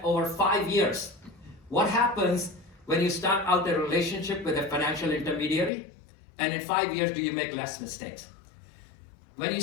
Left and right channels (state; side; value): drops out; right; at 5.7 s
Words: over 5 years. What happens when you start out a relationship with a financial intermediary, and in 5 years do you make less mistakes? When you